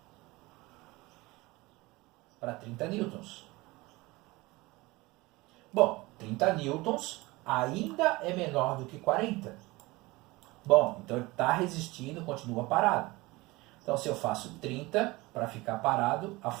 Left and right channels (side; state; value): left; quieter; 21.8 dB